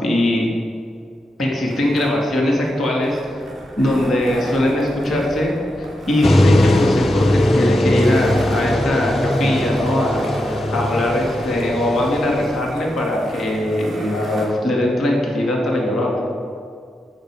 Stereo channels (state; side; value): normal; both; correlation 0.86